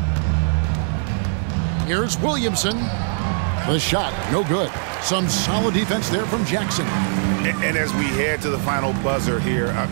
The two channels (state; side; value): silent; left; digital silence